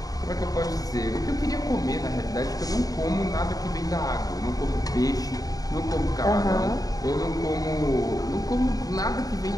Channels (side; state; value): right; late; 0.18 ms